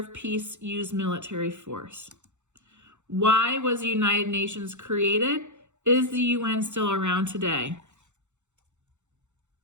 peace. Use military force. Why was the United Nations created? Is the UN still around today?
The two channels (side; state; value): left; late; 0.84 ms